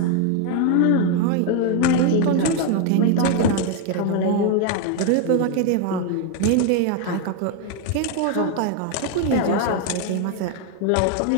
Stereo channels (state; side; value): different; both; correlation 0.01